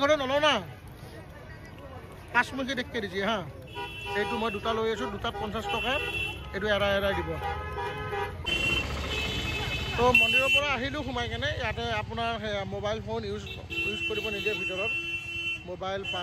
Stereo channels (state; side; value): identical; both; correlation 1.00